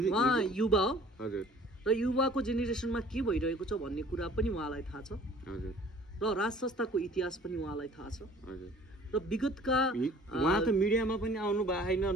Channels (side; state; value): both; normal; correlation 0.51